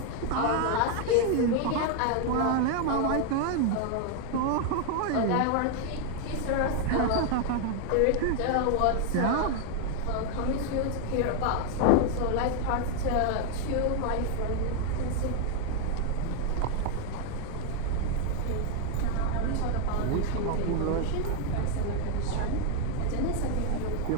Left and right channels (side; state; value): both; different; correlation 0.00